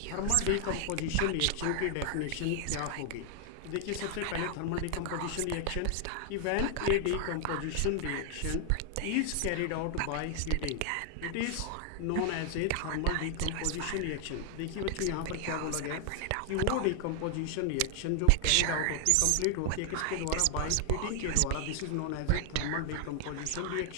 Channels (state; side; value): different; both; correlation 0.00